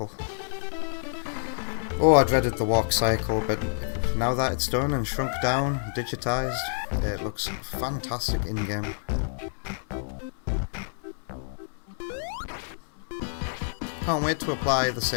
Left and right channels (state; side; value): silent; right; digital silence